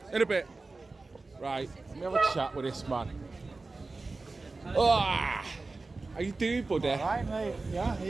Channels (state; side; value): quieter; left; 3.6 dB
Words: In a bit. Right, let me have a chat with this man. Ah, how you doing, buddy? All right, mate. Yeah, are